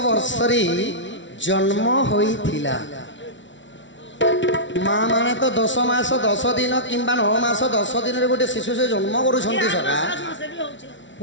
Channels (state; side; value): late; right; 0.55 ms